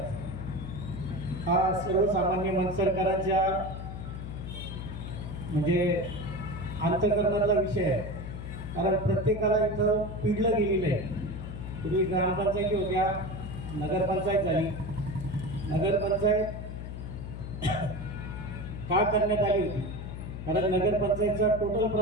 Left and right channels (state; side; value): noise; left; hum, 8 dB below the sound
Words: हा सर्वसामान्य मनसरकरांच्या म्हणजे अंतःकरणातला विषय आहे. कारण प्रत्येकाला इथं पिडलं गेलेलं आहे. पूर्वी ग्रामपंचायती होत्या, नगरपंचायत झाली. नगरपंचायत का करण्यात आली होती? कारण नगरपंचायतचा टोटल